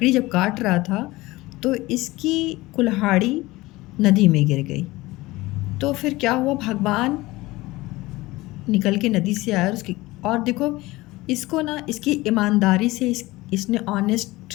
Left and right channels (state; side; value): quieter; right; 19.9 dB